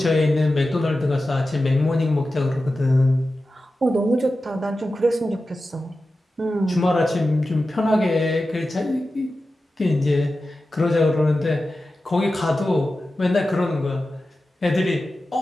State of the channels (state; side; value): normal; both; correlation 0.93